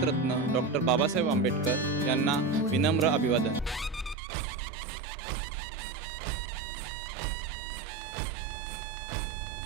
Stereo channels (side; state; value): left; drops out; at 4.2 s